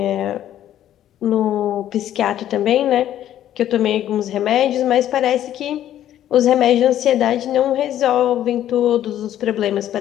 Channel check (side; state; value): right; quieter; 11.7 dB